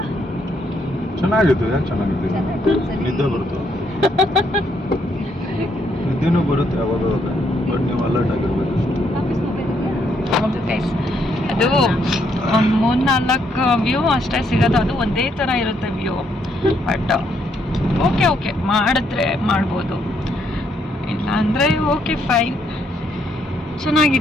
ಚೆನ್ನಾಗಿತ್ತು. ಚೆನ್ನಾಗಿತ್ತು. ನಿದ್ದೆ ಬರುತ್ತೆ. ನಿದ್ದೆನೂ ಬರುತ್ತೆ ಅವಾಗ, ಬಟ್ ನೀವು ಅಲರ್ಟ್ ಆಗಿರ್ಬೇಕು. ಹೌದು ಗೈಸ್, ಅದು ಒಂದು 3-4 ವ್ಯೂ ಅಷ್ಟೇ ಸಿಗೋದು. ಅದು ಒಂದೇ ಥರ ಇರುತ್ತೆ ವ್ಯೂ. ಬಟ್ ಓಕೆ ಮಾಡಿದ್ರೆ ಮಾಡ್ಬೋದು, ಇಲ್ಲ ಅಂದರೆ ಓಕೆ ಫೈನ್.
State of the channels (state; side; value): normal; both; correlation 0.73